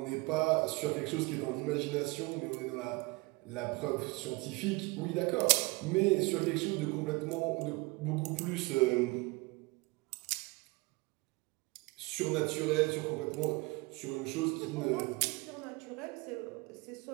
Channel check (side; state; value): left; quieter; 25.0 dB